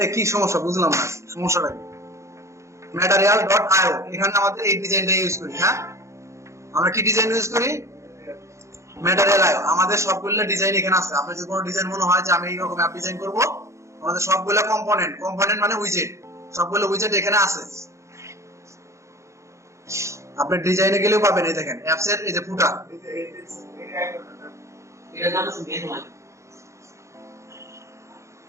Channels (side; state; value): left; late; 0.14 ms